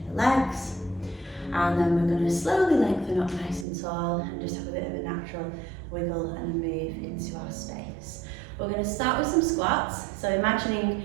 the legs. And then we're going to slowly lengthen up nice and tall and just have a bit of a natural wiggle and move into our space. We're going to start with some squats. So imagining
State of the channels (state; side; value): drops out; left; at 3.7 s